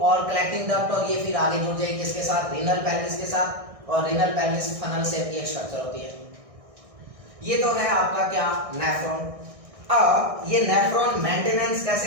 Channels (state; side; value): late; left; 1.6 ms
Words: कलेक्टिंग डक्ट, और ये फिर आगे जुड़ जाएगी किसके साथ, रीनल पेल्विस के साथ, और रीनल पेनिस फनल शेप की एक स्ट्रक्चर होती है। ये तो है आपका क्या नेफ्रॉन। अब ये नेफ्रॉन मेंटेनेंस